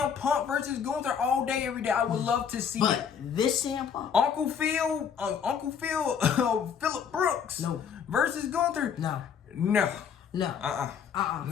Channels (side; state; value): right; quieter; 7.4 dB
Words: Punk versus Gunther all day, every day. I would love to see it. But this CM Punk? Uncle Phil, Phillip Brooks versus Gunther? No. No. No.